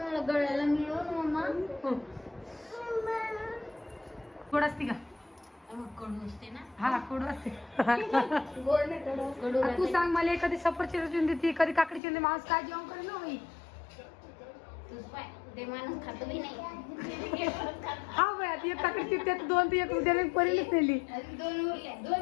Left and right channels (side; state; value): right; drops out; at 12.0 s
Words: गळ्याला मिळव ना मम्मा. थोडा असते का कडू असते ना. हा कडू असते. गोड नाही कडू. कडू तू राहते. सांग मला कधी सफरचंद चिरून देते कधी काकडी चिरून माणूस काय जेवण करेल ना बाई. तूच पाय ते माणूस खातो बी नाही. हा बाई आता एक काकडी चिरते तर दोन ते एक उद्याला परेलच नेली. आणि दोन उरल्या.